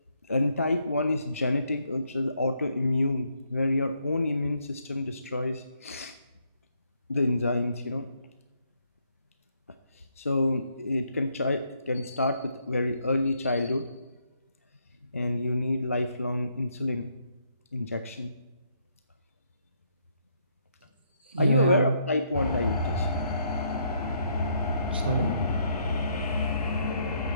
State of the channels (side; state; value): both; inverted; correlation -0.73